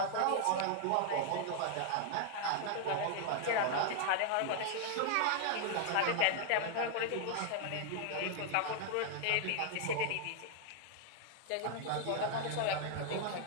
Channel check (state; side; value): different; both; correlation 0.00